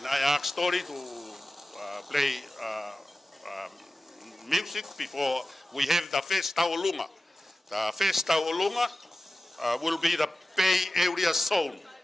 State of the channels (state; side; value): normal; both; correlation 0.96